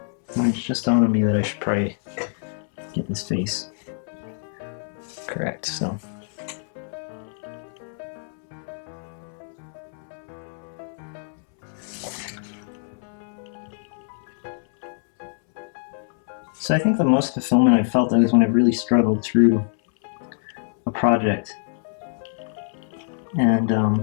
And it's just dawned on me that I should probably get this face correct, so. So I think the most fulfillment I've felt is when I've really struggled through a project and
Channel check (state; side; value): silent; right; 62 dB below the other